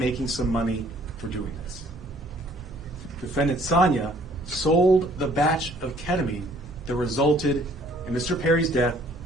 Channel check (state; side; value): normal; both; correlation 0.59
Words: some money for doing this." Defendant Sonia sold the batch of ketamine that resulted in Mr. Perry's death